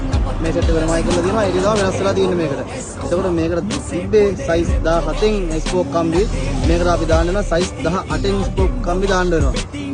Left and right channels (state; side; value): identical; both; correlation 1.00